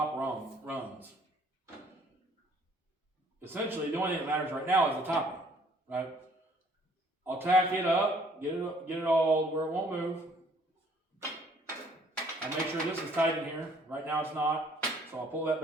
runs. Essentially, the only thing that matters right now is the topping, right? I'll tack it up, get it all where it won't move. I'll make sure this is tight in here. Right now it's not, so I'll pull that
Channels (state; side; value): normal; both; correlation 0.60